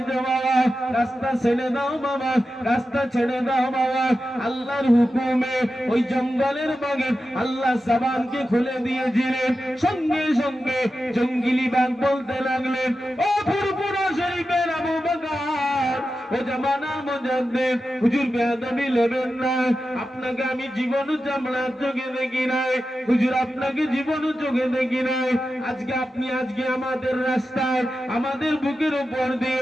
বাবা? রাস্তা ছেড়ে দাও বাবা, রাস্তা ছেড়ে দাও বাবা। আল্লাহর হুকুমে ওই জঙ্গলের বাঘে আল্লাহ জবানকে খুলে দিয়েছিলেন, সঙ্গে সঙ্গে জঙ্গলি বাঘ বলতে লাগলেন, ও ফুরফুরা শরীফের আবু বকর, ও জামানার মুজাদ্দিদ হুজুর, বেয়াদবি নেবেন না, আপনাকে আমি জীবন চামড়ার চোখে দেখি নাই হুজুর, আপনাকে জীবন চোখে দেখি নাই, আজকে আপনি আজকে আমাদের রাস্তায় আমাদের বুকের উপর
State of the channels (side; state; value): both; normal; correlation 0.91